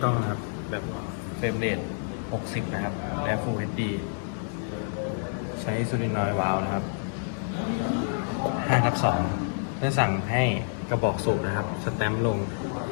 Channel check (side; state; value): right; silent; digital silence